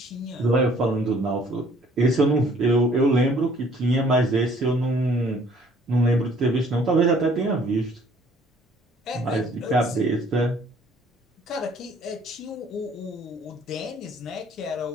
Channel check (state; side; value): normal; both; correlation 0.58